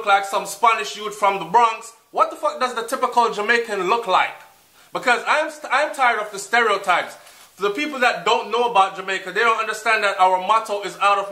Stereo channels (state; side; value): identical; both; correlation 1.00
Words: like some Spanish youth from the Bronx. What the fuck does the typical Jamaican look like? Because I'm tired of the stereotypes. For the people that don't know about Jamaica, they don't understand that our motto is out of